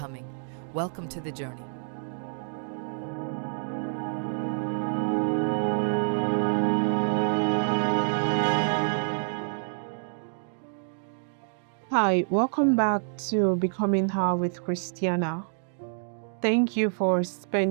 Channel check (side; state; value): left; silent; 60 dB below the other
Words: Welcome to the journey. Hi, welcome back to Becoming Her with Christiana. Thank you for